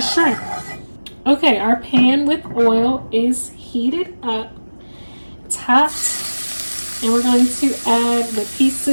Okay, our pan with oil is heated up, topped, and we're going to add the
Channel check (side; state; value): both; inverted; correlation -1.00